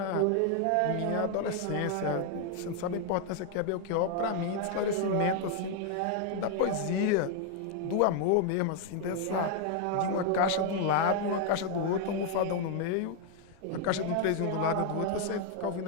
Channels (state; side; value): different; both; correlation 0.00